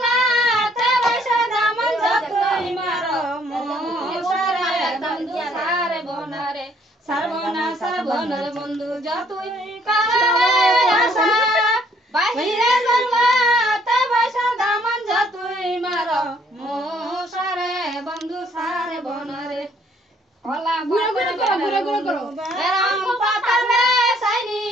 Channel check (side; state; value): both; normal; correlation 0.64